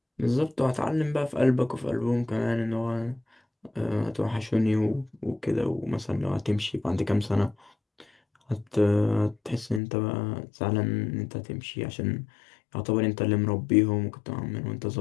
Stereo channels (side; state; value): right; drops out; at 9.8 s